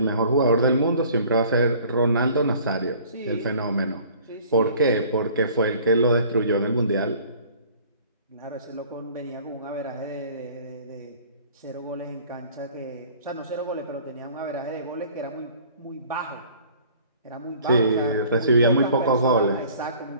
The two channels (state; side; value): inverted; both; correlation -0.51